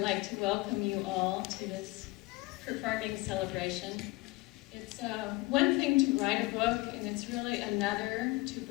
to welcome you all to this performing celebration. It's one thing to write a book, and it's really another to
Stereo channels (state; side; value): quieter; right; 22.1 dB